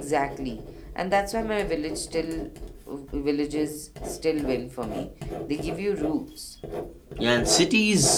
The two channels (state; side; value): identical; both; correlation 1.00